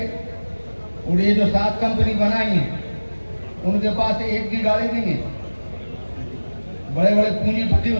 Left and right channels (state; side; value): inverted; both; correlation -1.00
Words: और ये जो 7 कंपनी बनाई है उनके पास एक भी गाड़ी नहीं है, बड़े बड़े पूंजीपति